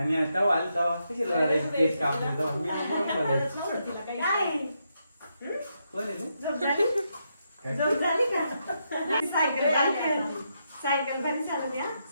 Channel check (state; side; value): inverted; both; correlation -0.81